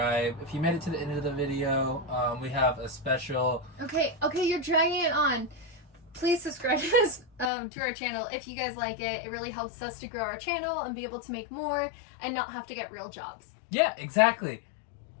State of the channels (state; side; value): drops out; right; at 7.5 s